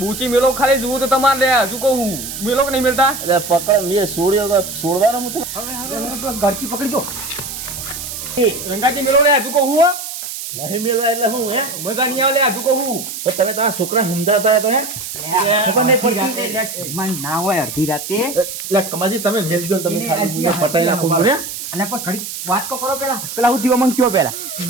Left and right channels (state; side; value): noise; right; hiss, 8 dB below the sound